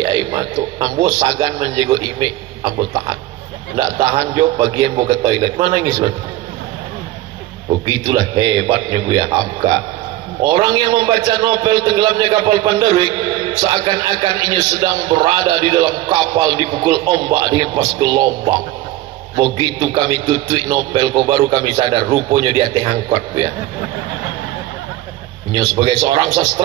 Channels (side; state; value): left; quieter; 15.5 dB